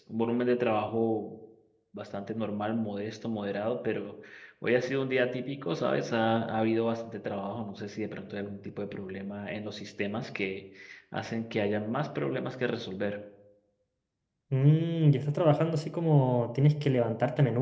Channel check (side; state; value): both; identical; correlation 1.00